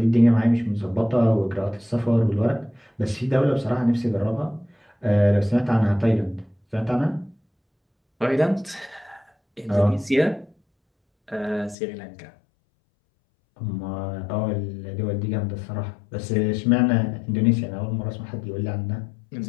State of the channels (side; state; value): right; drops out; at 11.8 s